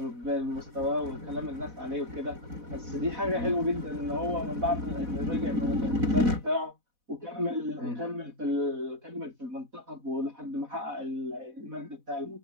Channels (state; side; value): late; left; 4.1 ms